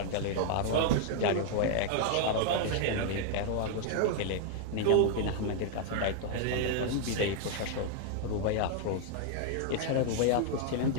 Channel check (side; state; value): both; different; correlation 0.00